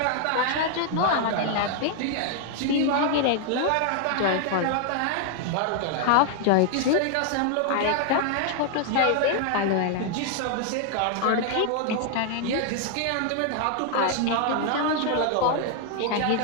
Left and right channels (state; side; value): different; both; correlation 0.00